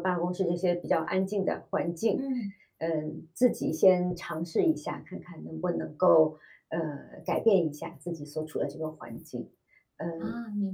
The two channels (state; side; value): identical; both; correlation 1.00